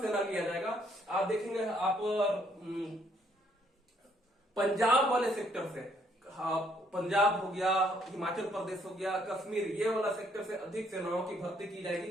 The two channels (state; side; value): normal; both; correlation 0.68